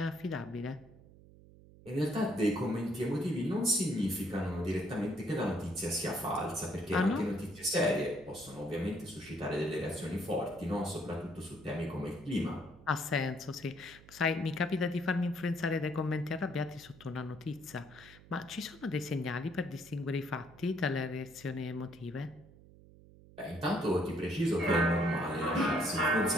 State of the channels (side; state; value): right; noise; hum, 22 dB below the sound